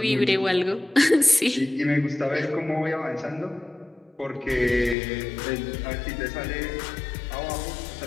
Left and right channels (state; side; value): drops out; right; at 5.0 s